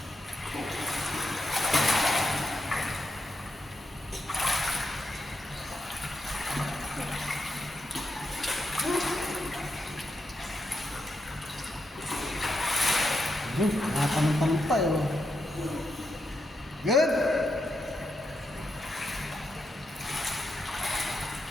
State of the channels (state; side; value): normal; both; correlation 0.84